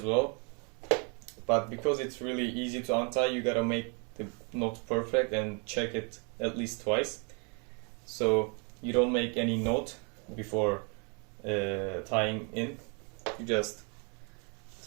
well, but because it's really easy to untie, you gotta make the knot perfect and check it at least twice, so you don't make any knot before tying in. You just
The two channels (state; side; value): quieter; left; 35.7 dB